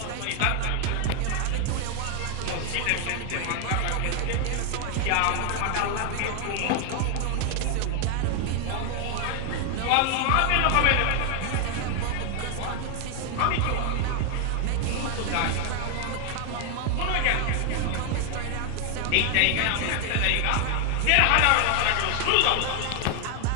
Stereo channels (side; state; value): both; different; correlation 0.00